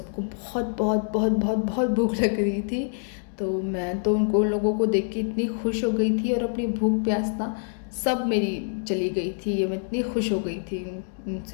बहुत बहुत बहुत बहुत बहुत भूख लग रही थी। तो मैं तो उन लोगों को देख के इतनी खुश हो गई थी और अपनी भूख प्यास ना सब मेरी चली गई थी। मैं इतनी खुश हो गई थी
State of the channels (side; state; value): right; silent; 61 dB below the other